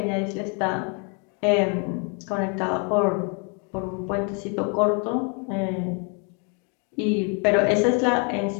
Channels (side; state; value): right; quieter; 36.8 dB